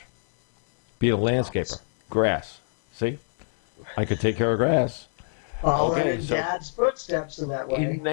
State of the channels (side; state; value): right; silent; 62 dB below the other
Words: Being a landscaper, grass. See, I could take care of grass. Following Okay, in so- Dad's footsteps in that way. In